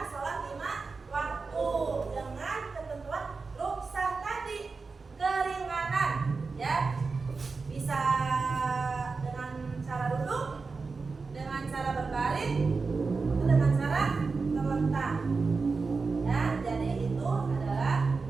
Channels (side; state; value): left; quieter; 4.4 dB